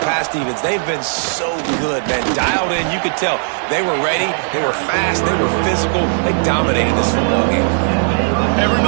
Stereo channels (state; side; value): silent; left; digital silence